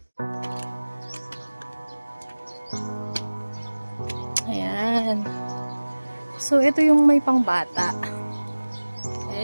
Ayan. So, ito yung may pangbata.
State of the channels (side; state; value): both; inverted; correlation -1.00